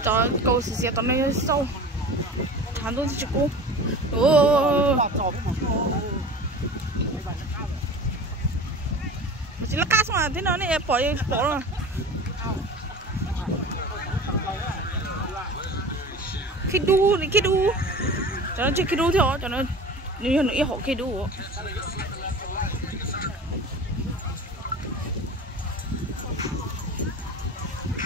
Trời, câu xì tao này sâu. Thằng tôi chỉ cô. Mà chỉ là cá mà thế nào này bỏ rồi. Khi đu. Cho nó chơi khi đu thôi, cho nó như nó họ khi đu.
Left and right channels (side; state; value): both; normal; correlation 0.36